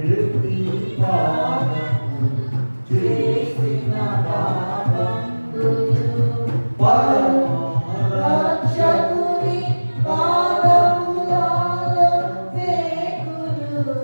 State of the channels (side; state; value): both; inverted; correlation -1.00